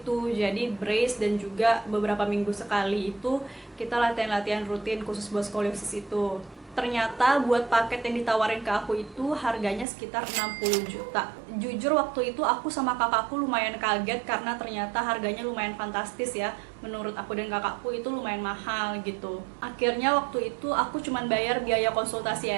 jadi brace dan juga beberapa minggu sekali itu kita latihan-latihan rutin khusus buat skoliosis itu. Ternyata buat paket yang ditawarin ke aku itu harganya sekitar 60 juta. Jujur waktu itu aku sama kakakku lumayan kaget karena ternyata harganya lumayan fantastis ya. Menurut aku dan kakakku itu lumayan mahal gitu. Akhirnya waktu itu aku cuman bayar biaya konsultasi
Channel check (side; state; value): left; drops out; at 9.9 s